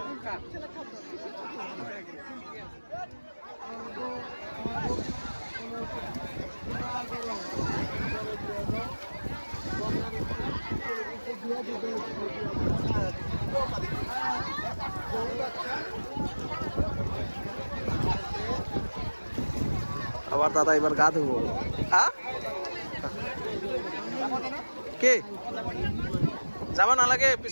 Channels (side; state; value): both; inverted; correlation -1.00